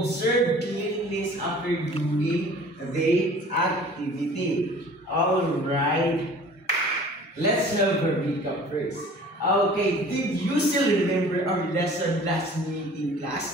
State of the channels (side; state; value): both; normal; correlation 0.47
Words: cleanliness after doing the activity. Alright. Let's have a recap first. Okay, did you still remember our lesson last meeting